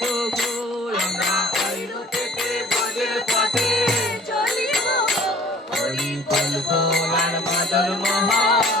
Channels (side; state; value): both; normal; correlation 0.52